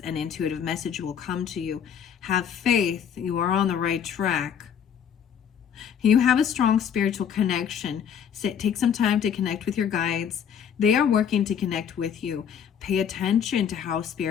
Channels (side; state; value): right; quieter; 8.1 dB